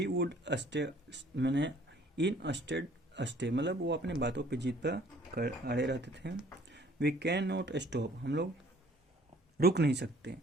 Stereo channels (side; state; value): both; normal; correlation 0.57